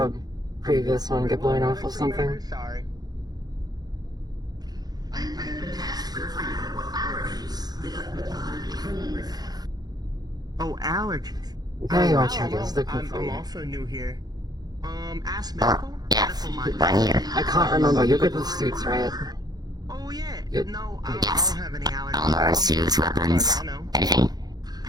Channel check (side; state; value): left; late; 0.19 ms